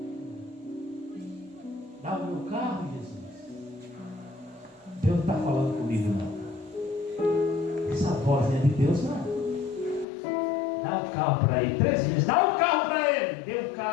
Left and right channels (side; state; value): right; drops out; at 10.1 s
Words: Dá o meu carro, Jesus? Deus não está falando comigo não. Essa voz não é de Deus não. Dá o carro para ele. 3 vezes, dá o carro para ele. Deu o